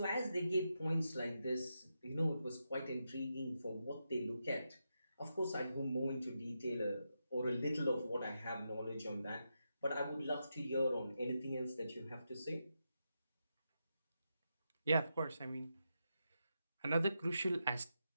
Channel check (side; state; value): both; inverted; correlation -0.86